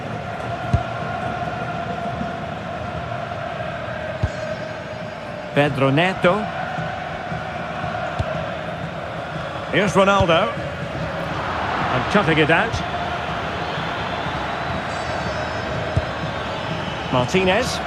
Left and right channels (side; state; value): both; identical; correlation 1.00